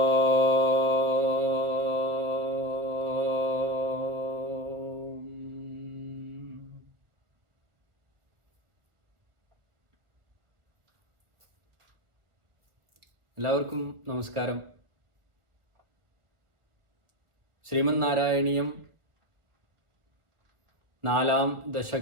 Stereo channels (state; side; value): late; left; 1.3 ms